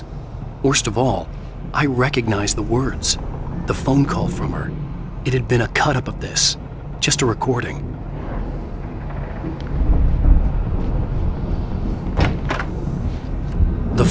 Worst of all, I recognized the words, the phone call from her. It had been a cut-up of this, just a recording. The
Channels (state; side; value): identical; both; correlation 1.00